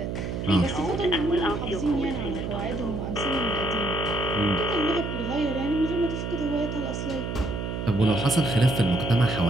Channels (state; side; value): noise; right; hum, 4 dB below the sound